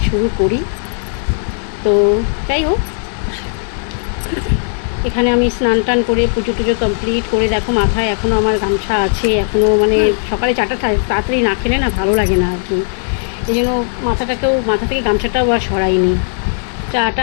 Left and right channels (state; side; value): silent; right; 67 dB below the other